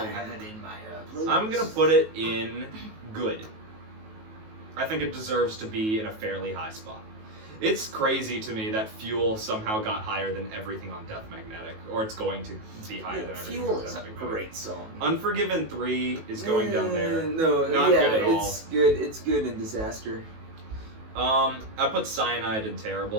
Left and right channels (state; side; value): late; left; 19 ms